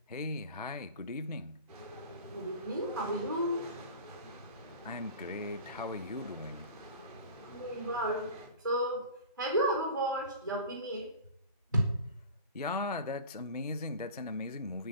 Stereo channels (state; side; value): inverted; both; correlation -0.38